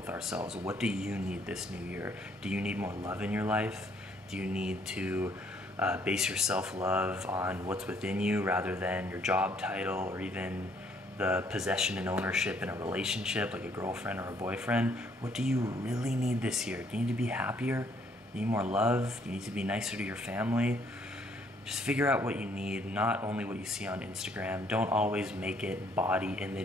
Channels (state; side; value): normal; both; correlation 0.66